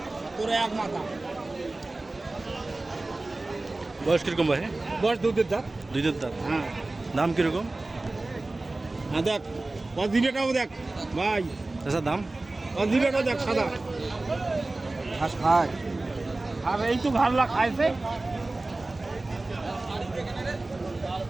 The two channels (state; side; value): quieter; left; 3.0 dB